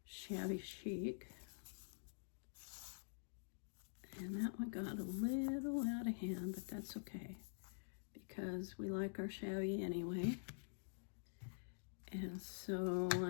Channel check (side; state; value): right; silent; digital silence